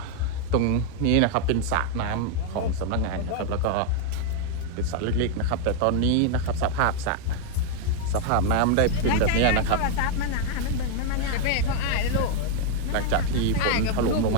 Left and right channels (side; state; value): both; different; correlation 0.00